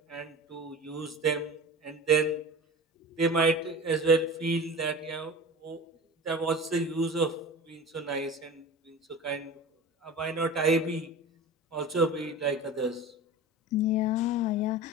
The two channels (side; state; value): both; normal; correlation 0.34